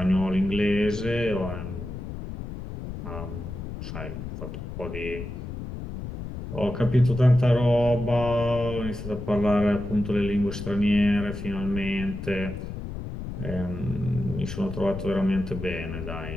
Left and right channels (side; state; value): left; noise; rumble, 8 dB below the sound